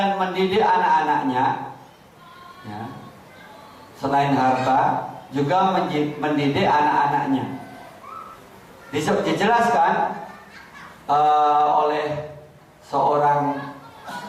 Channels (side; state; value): both; identical; correlation 1.00